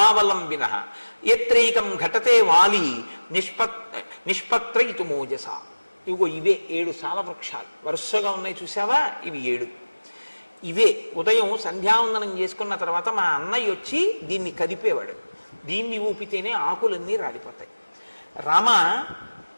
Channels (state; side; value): inverted; both; correlation -1.00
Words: ఎత్రైకం ఘటతే వాలి నిష్పత్రయితు మోజస. ఇవిగో ఇవే 7 సాల వృక్షాలు వరుసగా ఉన్నాయి చూసావా, ఇవి 7. ఇవే ఉదయం సంధ్యావందనం చేసుకున్న తర్వాత మా అన్నయ్య వచ్చి దీన్ని కదిపేవాడు. దీన్ని ఊపితేనే ఆకులన్నీ రాలిపోతాయి. రామ,